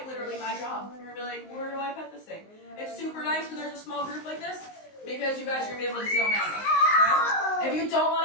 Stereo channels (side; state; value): right; late; 19 ms